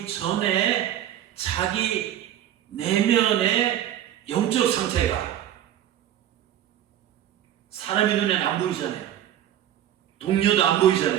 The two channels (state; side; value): quieter; left; 11.5 dB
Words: 전에 자기 내면의 영적 상태가 사람의 눈에는 안 보이잖아요. 동료도 안